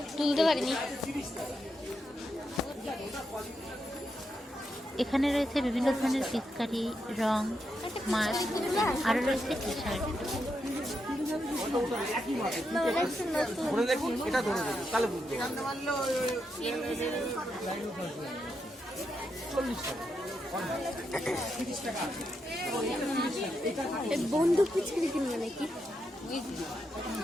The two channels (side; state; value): both; normal; correlation 0.83